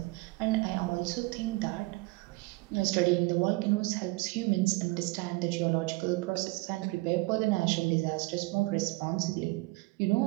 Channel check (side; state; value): left; quieter; 23.4 dB